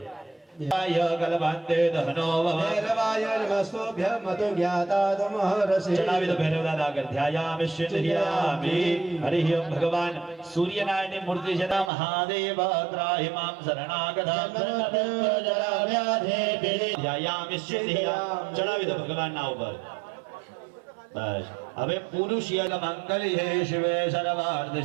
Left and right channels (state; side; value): drops out; left; at 11.9 s